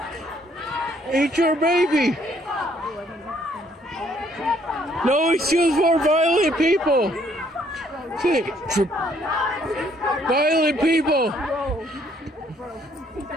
Eat your baby. No excuse for violent people. Say it triple. Violent people.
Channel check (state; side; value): normal; both; correlation 0.66